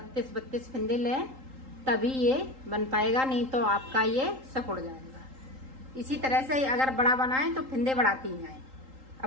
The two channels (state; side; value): late; left; 3.8 ms